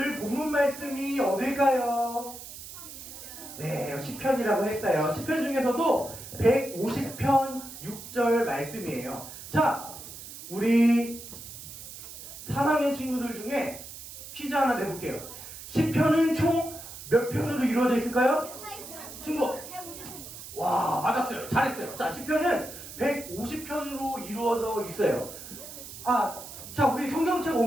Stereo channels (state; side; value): noise; right; hiss, 13 dB below the sound